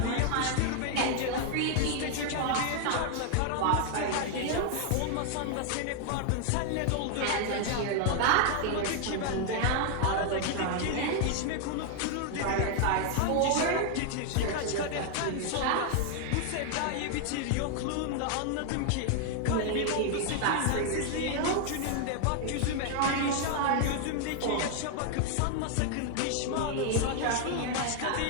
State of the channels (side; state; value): both; different; correlation 0.00